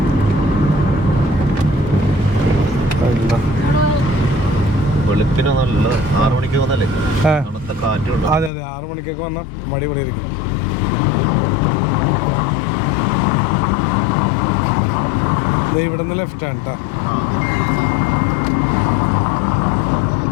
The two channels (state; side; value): drops out; right; at 8.5 s